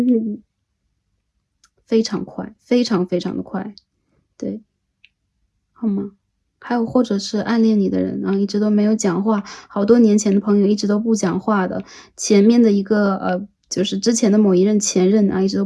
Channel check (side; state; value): both; identical; correlation 1.00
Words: 非常快，非常非常的快，对，好吗？还有或者是暗恋你的人啊，一直都没有讲话，好多年前的朋友一直都不讲话的，前面的一个就是之前的某一任前任啊，一直都